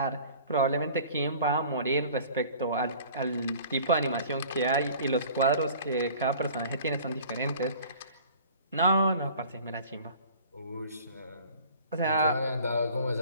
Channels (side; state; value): both; inverted; correlation -0.47